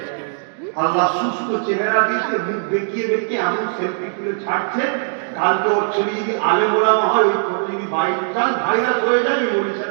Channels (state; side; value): silent; left; digital silence